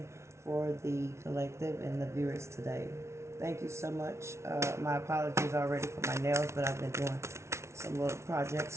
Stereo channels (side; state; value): left; late; 0.13 ms